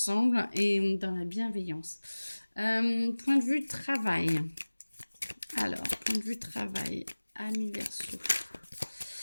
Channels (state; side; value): inverted; both; correlation -1.00